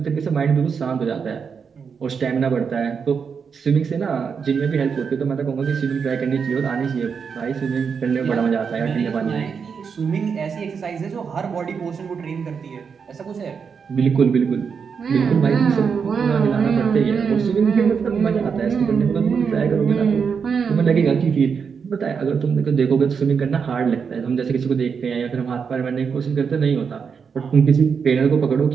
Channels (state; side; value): quieter; left; 6.2 dB